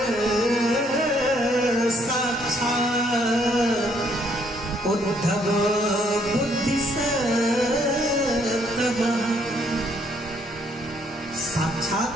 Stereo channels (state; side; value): normal; both; correlation 0.68